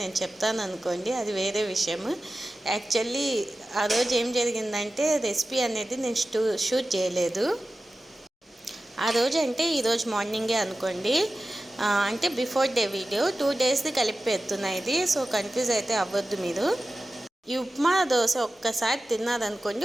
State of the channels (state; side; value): normal; both; correlation 0.95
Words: చెప్తాను అనుకోండి, అది వేరే విషయం. యాక్చువల్లీ ఆ రోజు ఏం జరిగిందంటే రెసిపీ అనేది నేను షూట్ చేయలేదు. ఆ రోజు అంటే ఈరోజు మార్నింగే అనుకోండి, అంటే బిఫోర్ డే వీడియో 2 daysది కలిపి పెడుతున్నా ఇది. సో కన్ఫ్యూజ్ అయితే అవ్వద్దు మీరు. ఈ ఉప్మా దోశ ఒక్కసారి తిన్నారనుకోండి,